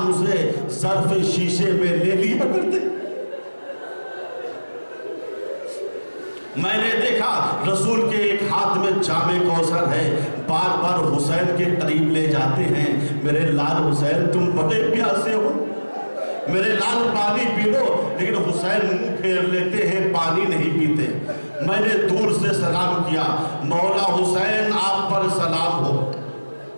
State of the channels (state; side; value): inverted; both; correlation -1.00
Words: اسے ظرف شیشے میں لے لیا کرتے۔ میں نے دیکھا رسول کے ایک ہاتھ میں جام کوثر ہے، بار بار حسین کے قریب لے جاتے ہیں، میرے لال حسین تم بڑے پیاسے ہو، میرے لال پانی پی لو، لیکن حسین منہ پھیر لیتے ہیں، پانی نہیں پیتے۔ میں نے دور سے سلام کیا، مولا حسین آپ پر سلام ہو۔